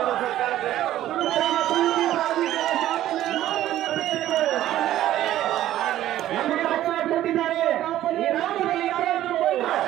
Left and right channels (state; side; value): quieter; left; 13.3 dB